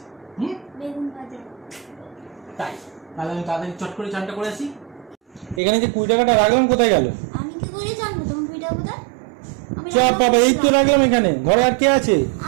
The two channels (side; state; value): left; drops out; at 5.6 s